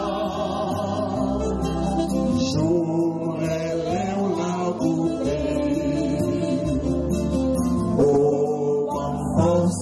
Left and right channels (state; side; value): identical; both; correlation 1.00